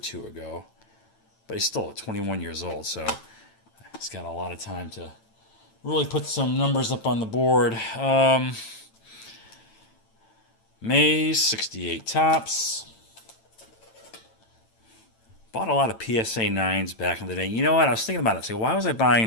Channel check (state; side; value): late; right; 9.0 ms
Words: ago. But he's still 21 years old, so he's got a lot of time to really put some numbers up on the board. Mays, 68 Topps. Bought a lot of PSA 9s back in the day. You know what? I was thinking about it. So why was I